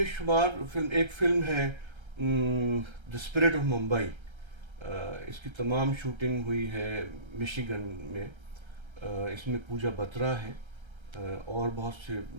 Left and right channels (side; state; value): left; late; 1.3 ms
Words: شمار فلم. ایک فلم ہے دی اسپرٹ آف ممبئی، اس کی تمام شوٹنگ ہوئی ہے مشیگن میں. اس میں پوجا بترا ہے اور بہت سے